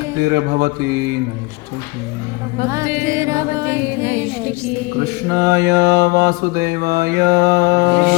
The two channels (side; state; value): right; quieter; 24.6 dB